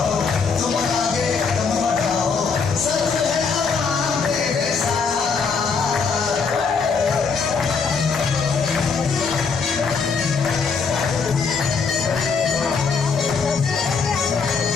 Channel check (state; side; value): quieter; right; 5.2 dB